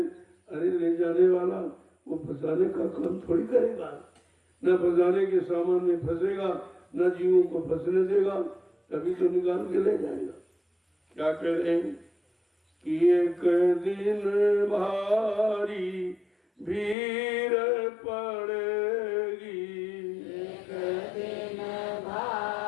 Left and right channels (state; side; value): drops out; right; at 16.9 s